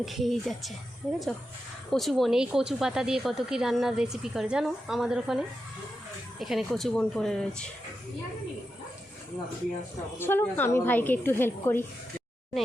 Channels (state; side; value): normal; both; correlation 0.88